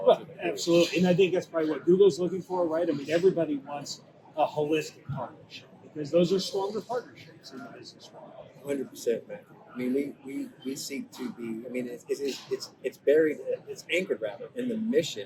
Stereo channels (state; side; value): identical; both; correlation 1.00